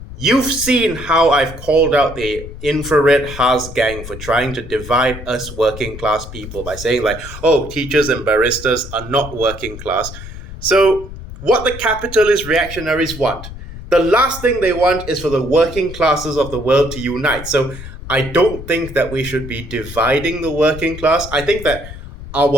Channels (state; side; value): noise; left; rumble, 12 dB below the sound